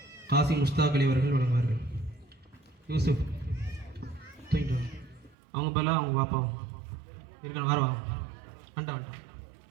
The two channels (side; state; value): left; drops out; at 5.4 s